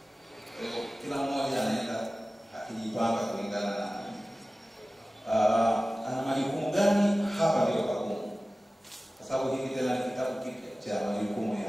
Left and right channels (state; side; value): normal; both; correlation 0.96